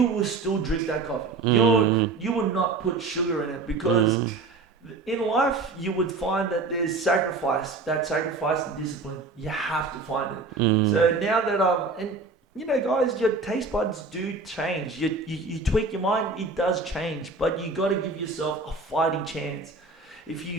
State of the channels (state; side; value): quieter; left; 3.9 dB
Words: will still drink that coffee. You will not put sugar in it because in life you would find that there's sacrifice. That sacrifice and discipline, you have to find it. So now that and you know, guys, your taste buds do change. You tweak your mind, it does change, but you got to give yourself a fighting chance. If you